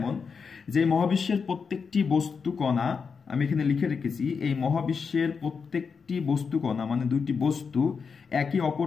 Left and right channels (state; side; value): quieter; right; 5.6 dB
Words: যে মহাবিশ্বের প্রত্যেকটি বস্তু কণা, আমি এখানে লিখে রেখেছি, এই মহাবিশ্বের প্রত্যেকটি বস্তু কণা মানে দুইটি বস্তু একে